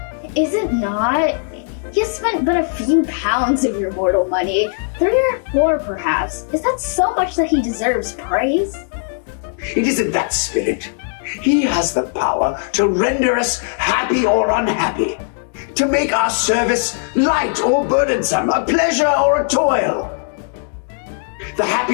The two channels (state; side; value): silent; right; digital silence